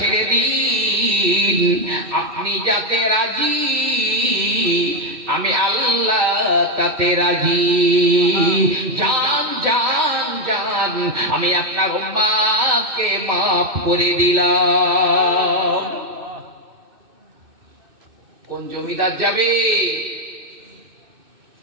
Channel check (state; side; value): late; left; 2.6 ms